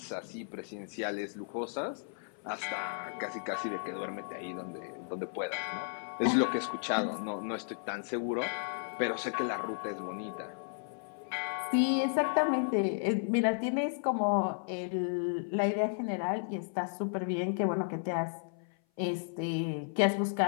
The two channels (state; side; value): silent; right; 55 dB below the other